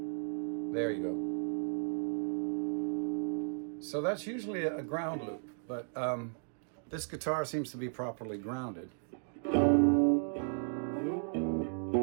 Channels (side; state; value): left; silent; digital silence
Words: There you go. So that's usually a ground loop, but this guitar seems to be properly grounded.